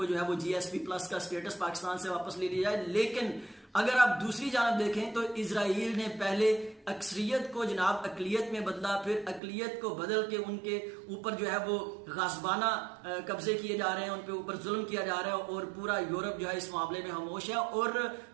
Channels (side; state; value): left; drops out; at 9.4 s